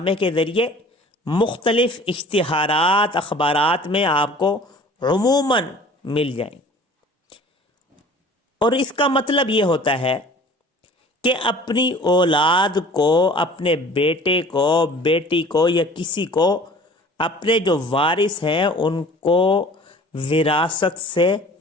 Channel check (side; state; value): both; normal; correlation 0.47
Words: کے ذریعے مختلف اشتہارات اخبارات میں آپ کو عموماً مل جائیں، اور اس کا مطلب یہ ہوتا ہے کہ اپنی اولاد کو، اپنے بیٹے کو، بیٹی کو یا کسی کو، اپنے جو وارث ہیں ان کو وراثت سے